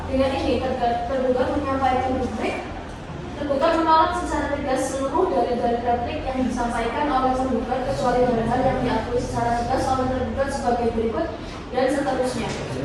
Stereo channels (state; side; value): identical; both; correlation 1.00